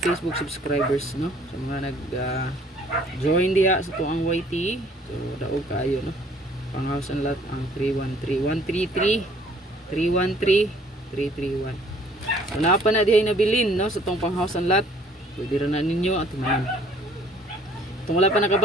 subscribers, no? So mga nag join diha sa to ang YT, so daog kaayo, no? Panghouse lot ang 313 133 313 331. So napa na dihay nabilin, no, sa tong panghouse lot. Pwede ra na ninyo at man. Kung wala pa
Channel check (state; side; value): normal; both; correlation 0.58